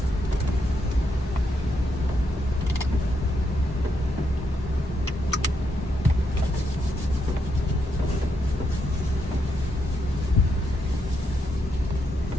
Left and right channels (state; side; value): normal; both; correlation 0.80